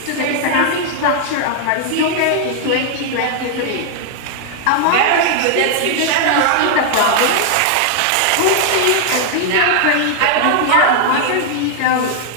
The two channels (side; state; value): both; different; correlation 0.00